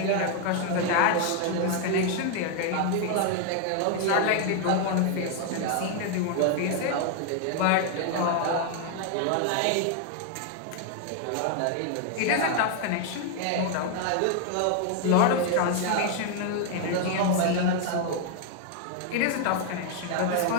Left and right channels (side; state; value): both; different; correlation 0.00